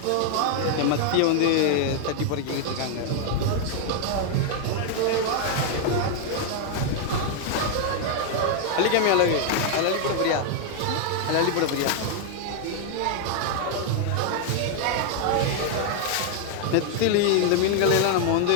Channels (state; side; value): different; both; correlation 0.00